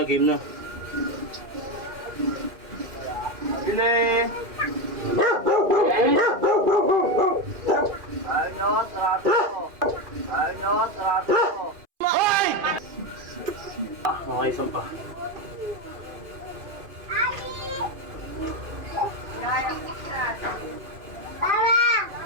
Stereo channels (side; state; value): left; late; 2.5 ms